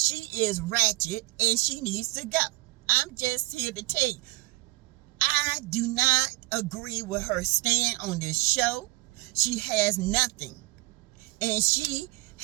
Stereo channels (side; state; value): left; quieter; 21.6 dB